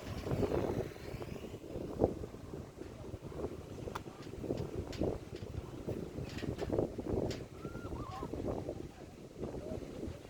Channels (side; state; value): both; identical; correlation 1.00